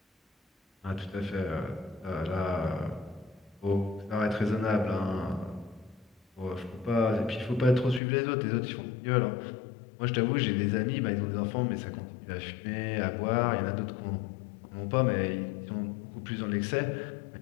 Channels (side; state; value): right; drops out; at 8.0 s